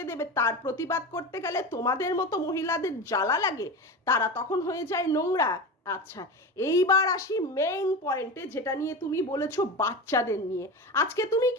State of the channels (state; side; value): normal; both; correlation 0.25